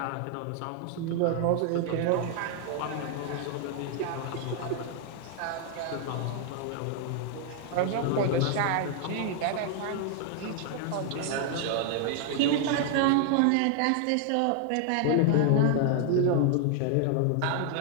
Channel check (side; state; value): both; different; correlation 0.00